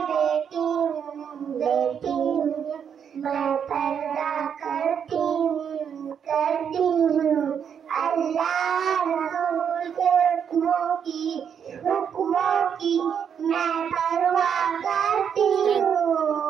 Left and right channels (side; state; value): left; quieter; 7.8 dB